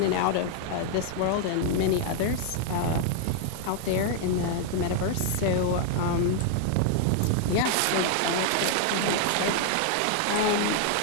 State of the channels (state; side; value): different; both; correlation 0.00